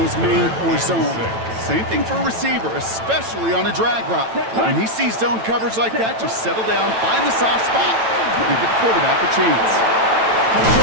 man or zone. Same thing for a receiver, especially on a drag route. When he sees zone coverage like that, just settle down, find the soft spot, and give the quarterback a chance.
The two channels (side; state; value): left; late; 9.0 ms